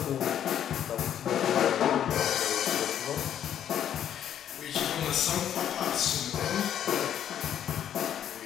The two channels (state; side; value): quieter; right; 10.0 dB